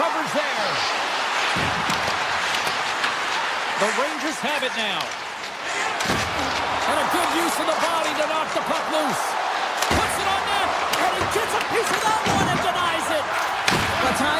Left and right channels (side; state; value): both; identical; correlation 1.00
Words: there. The Rangers have it now. And a good use of the body to knock the puck loose. Puts it on net, and he gets a piece of that one and denies it. A